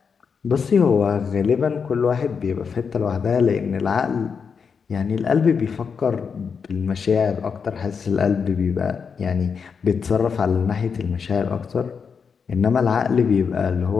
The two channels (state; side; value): quieter; right; 6.0 dB